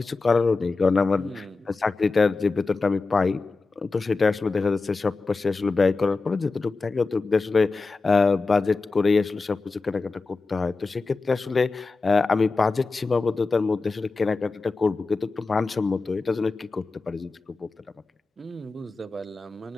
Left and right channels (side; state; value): right; quieter; 3.9 dB